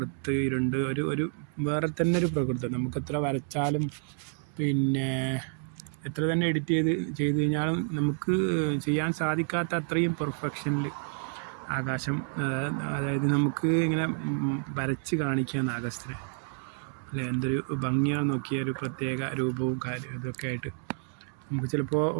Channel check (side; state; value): left; silent; 57 dB below the other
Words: ഇരുണ്ട് ഒരു വേറെ തന്നെ ഒരു പ്രകൃതം. നമുക്ക് എത്ര വരച്ചാലും പിന്നെ എത്ര തന്നെ എഡിറ്റ് ചെയ്ത് കഴിഞ്ഞാലും നമുക്ക് ചെയ്യാൻ സാധിക്കാത്ത അത്രയും പെർഫെക്ഷനിൽ ആകാശം, അതായത് നമുക്ക് ഇങ്ങനെ വരച്ച് കാണിക്കുകയാണ് ആകാശത്തിന് അല്ലേ. എന്തൊരു ഭംഗിയാണ് നോക്കിയ, ഒരു പ്രത്യേക രൂപവും കാര്യം ഇതൊക്കെ ആയിട്ട് നമുക്ക് ചിലപ്പോൾ